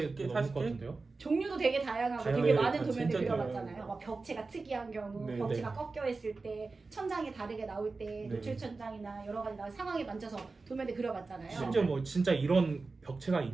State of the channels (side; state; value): left; quieter; 3.9 dB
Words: 40개? 넘을 것 같은데요? 종류도 되게 다양하고 되게 다양해요. 많은 도면을 진짜 그려봤잖아요. 다양해요. 막 벽체가 특이한 경우, 네, 벽체가 네. 꺾여 있을 때, 천장이 다르게 나올 때, 네. 노출 천장이나 여러 가지 상황에 만져서 도면을 그려봤잖아요. 심지어 뭐 진짜 이런 벽체가